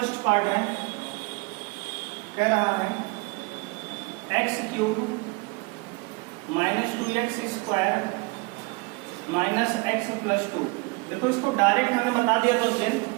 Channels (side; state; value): left; quieter; 27.0 dB